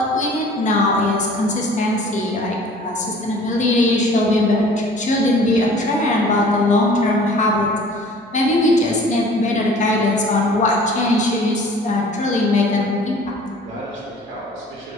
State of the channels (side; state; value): both; normal; correlation 0.49